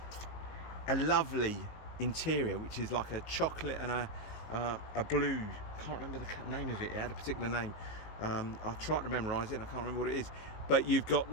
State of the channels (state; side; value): late; right; 19 ms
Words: a lovely interior which is like a chocolate and a blue. Can't remember the name of it. It had a particular name. I tried to memorize it and I can't remember what it is, but you've got